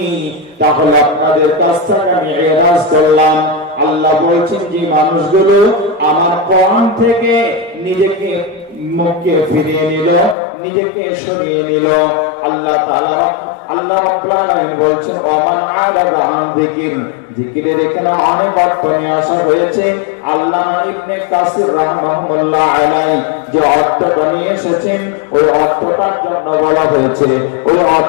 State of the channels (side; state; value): right; drops out; at 10.4 s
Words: তাহলে আপনাদের কাছ থেকে আমি এরাজ করলাম। আল্লাহ বলছেন যে মানুষগুলো আমার কোরআন থেকে নিজেকে মুখকে ফিরিয়ে নিল, নিজেকে সরিয়ে নিল, আল্লাহ তাআলা আল্লাহ রাব্বুল আলামিন বলছেন ওয়ামান আ'রাদা আন যিকর। যিকিরের এখানে অনেক অর্থ নিয়ে আসা হয়েছে। আল্লামা ইবনে কাসির রাহমাহুল্লাহ আলাইহি যে অর্থটা নিয়ে এসেছেন, ওই অর্থটার জন্য বলা হয়েছে, ওই